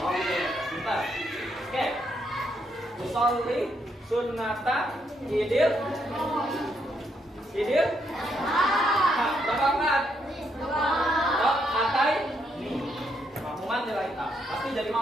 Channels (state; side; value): normal; both; correlation 0.76